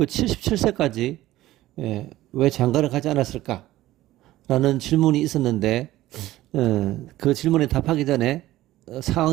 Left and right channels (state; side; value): quieter; left; 15.8 dB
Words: 77세까지 왜 장가를 가지 않았을까? 라는 질문이 있었는데 그 질문에 답하기 전에